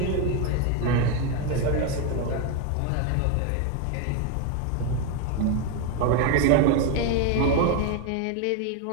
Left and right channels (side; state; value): both; different; correlation 0.02